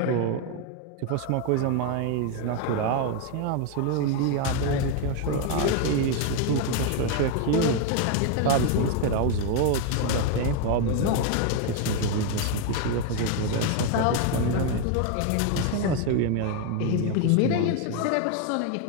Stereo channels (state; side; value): different; both; correlation 0.01